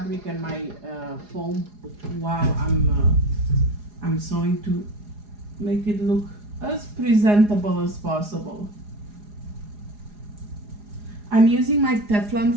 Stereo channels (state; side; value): late; left; 4.8 ms